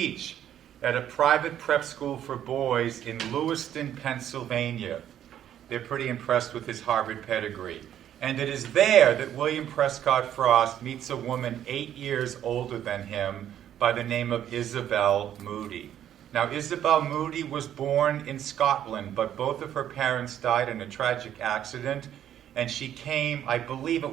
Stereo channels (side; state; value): left; quieter; 10.7 dB